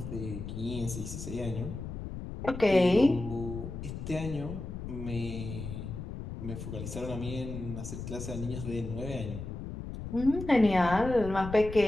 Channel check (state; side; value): noise; left; rumble, 8 dB below the sound